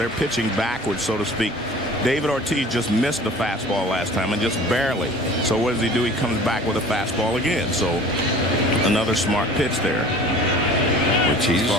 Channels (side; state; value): both; normal; correlation 0.44